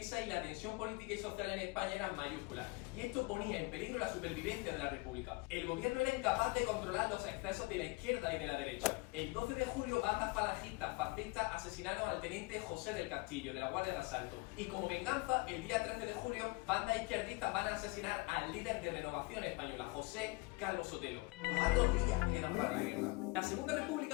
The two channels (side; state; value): right; quieter; 25.3 dB